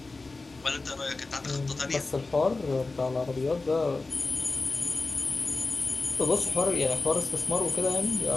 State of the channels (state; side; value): quieter; right; 3.5 dB